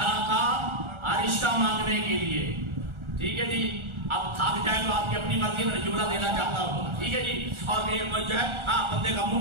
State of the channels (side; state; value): left; late; 1.4 ms